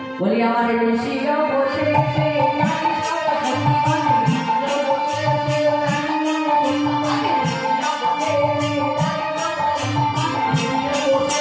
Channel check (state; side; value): identical; both; correlation 1.00